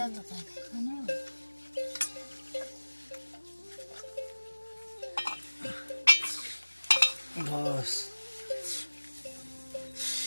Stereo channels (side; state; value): both; inverted; correlation -1.00